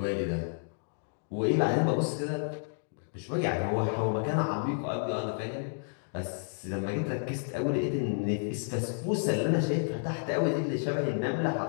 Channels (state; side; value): silent; right; digital silence